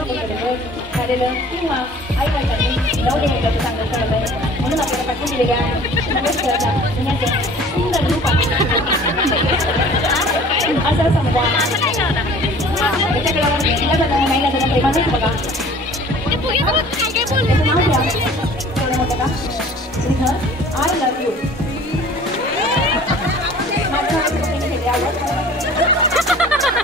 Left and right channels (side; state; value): both; normal; correlation 0.48